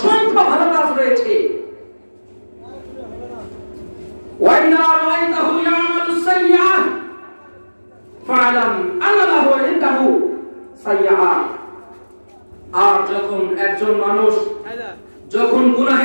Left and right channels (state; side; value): inverted; both; correlation -1.00